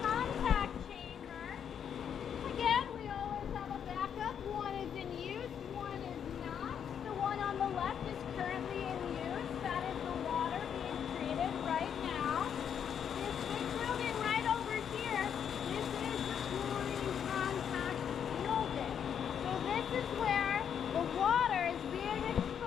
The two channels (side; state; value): right; quieter; 8.2 dB